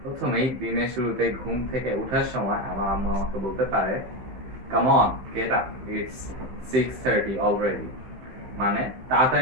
প্রথমেই দিনের শুরুতে ঘুম থেকে ওঠার সময় আমার আম্মু আমাকে বলতে পারে, come on get up, it's 6:30 already. মানে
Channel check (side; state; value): left; late; 15 ms